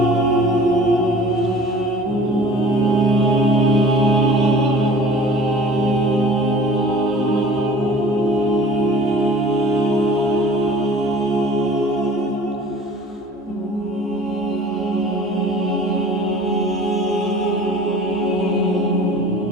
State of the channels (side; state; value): both; normal; correlation 0.46